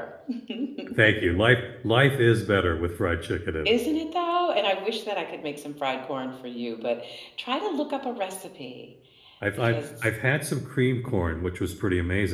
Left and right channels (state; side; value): identical; both; correlation 1.00